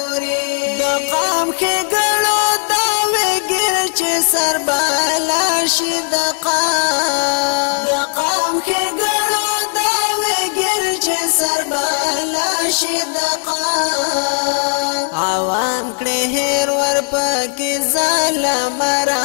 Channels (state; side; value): silent; right; digital silence